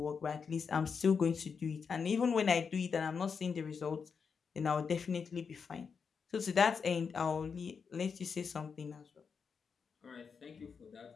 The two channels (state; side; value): quieter; right; 5.9 dB